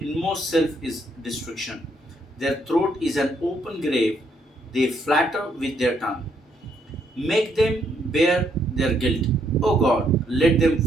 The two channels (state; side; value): normal; both; correlation 0.72